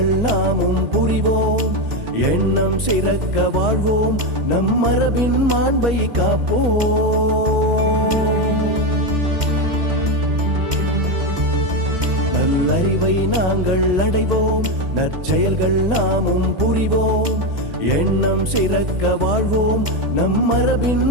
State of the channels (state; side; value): late; left; 2.2 ms